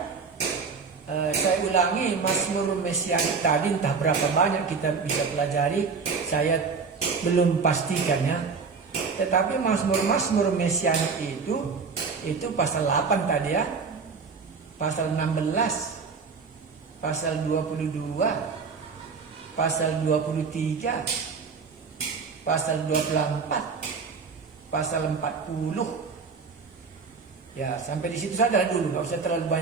saya ulangi Mazmur mesianik tadi, entah berapa banyak kita bisa pelajari, saya belum pastikannya. Tetapi Mazmur mesianik itu pasal 8 tadi ya, pasal 16, pasal 22, pasal 23, pasal 24, pasal 40. Ya, sampai di situ saja dulu, nggak usah terlalu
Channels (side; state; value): left; quieter; 5.1 dB